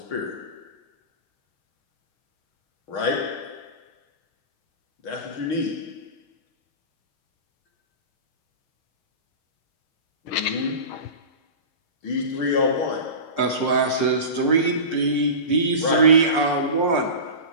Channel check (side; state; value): right; late; 6.1 ms